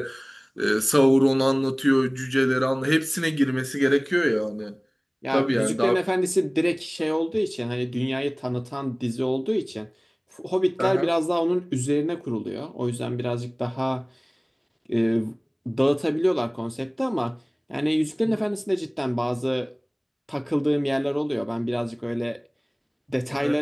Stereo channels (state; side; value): identical; both; correlation 1.00